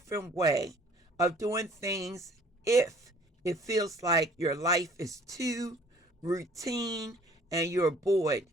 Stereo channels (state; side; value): normal; both; correlation 0.54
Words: way of doing things if it feels like your life is too routine and you're bored